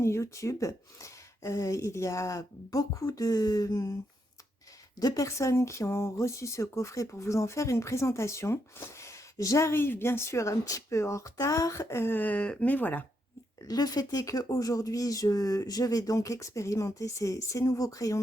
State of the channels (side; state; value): both; normal; correlation 0.80